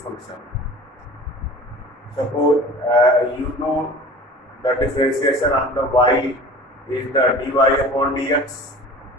function? Suppose you know the differentiation of the y is the dy upon dx.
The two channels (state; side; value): normal; both; correlation 0.41